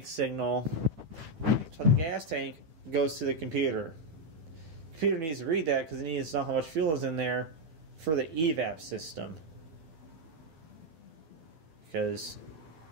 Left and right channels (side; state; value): left; late; 12 ms